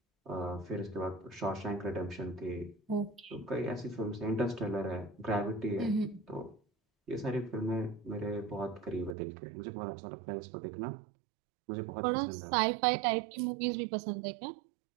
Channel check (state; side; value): drops out; left; at 9.2 s